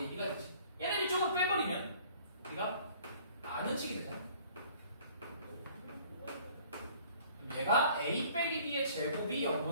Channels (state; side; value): inverted; both; correlation -0.54